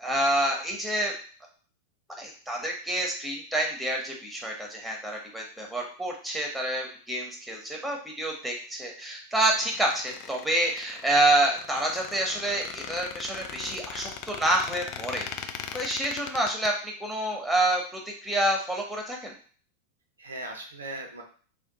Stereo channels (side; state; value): both; normal; correlation 0.51